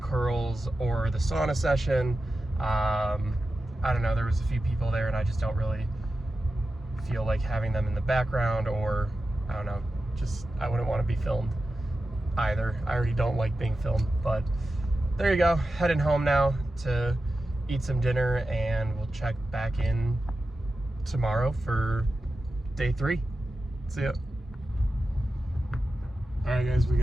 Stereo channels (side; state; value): both; normal; correlation 0.92